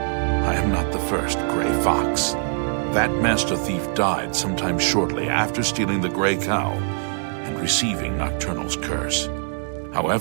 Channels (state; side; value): silent; left; digital silence